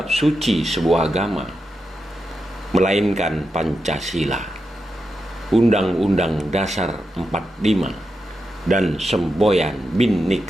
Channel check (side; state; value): both; normal; correlation 0.87